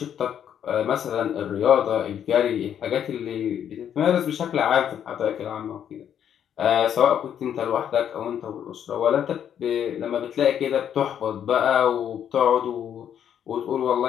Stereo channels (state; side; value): quieter; right; 9.2 dB